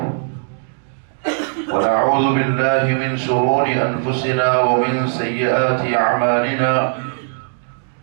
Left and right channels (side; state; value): left; silent; 66 dB below the other